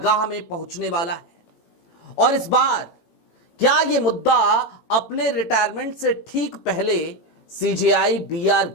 में पहुंचने वाला है? और इस बार क्या यह मुद्दा अपने रिटायरमेंट से ठीक पहले सीजेआई बीआर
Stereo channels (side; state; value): right; late; 18 ms